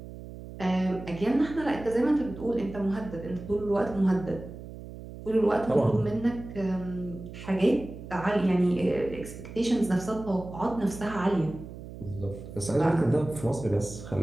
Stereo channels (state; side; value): noise; right; hum, 13 dB below the sound